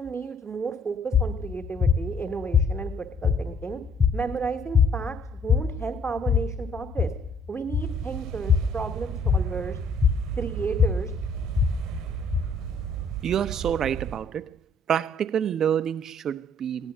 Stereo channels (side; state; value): both; normal; correlation 0.61